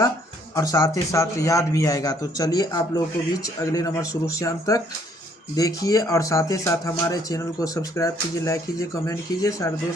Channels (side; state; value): both; normal; correlation 0.65